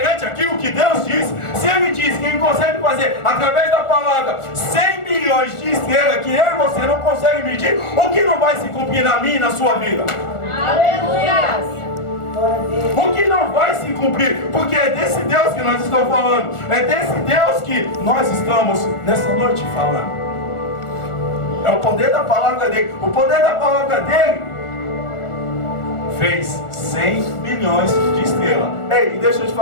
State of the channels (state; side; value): late; right; 1.4 ms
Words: aquilo que Deus disse? Se Ele diz que Ele consegue fazer através da palavra 100 milhões de estrelas que eu e você não consegue medir, o que não vai se cumprir na minha e na sua vida? Aleluia. O que não vai se cumprir? Porque é desse Deus que nós estamos falando. É desse Deus que nós estamos nessa noite falando. É o poder da palavra dele. O poder da palavra dele fez 100 milhões de estrelas. Ei, deixa eu te